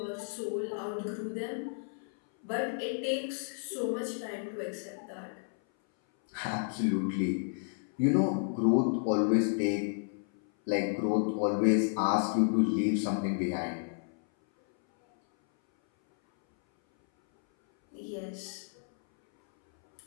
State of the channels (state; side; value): silent; right; 57 dB below the other